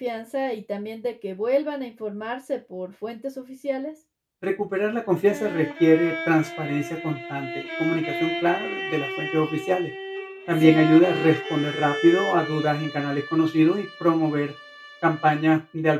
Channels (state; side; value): identical; both; correlation 1.00